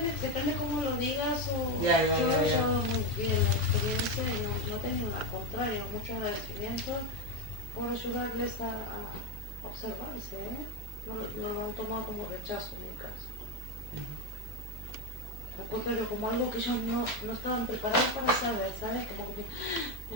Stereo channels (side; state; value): both; normal; correlation 0.11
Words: depende cómo lo digas o Ya, yo lo he ya. llevado muy bien la experiencia y no he tenido al contrario, mucho agradecimiento por ayudarles a observarse, ¿eh? No lo han tomado como rechazo en mi caso. Al contrario, como algo que ellos no estaban preparados para saber, ¿sabes? Como que